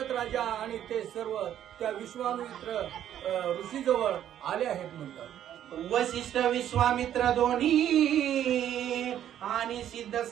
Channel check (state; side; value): quieter; left; 10.8 dB